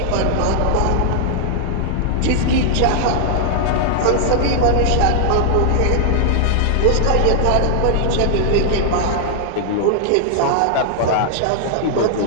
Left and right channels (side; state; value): both; different; correlation -0.01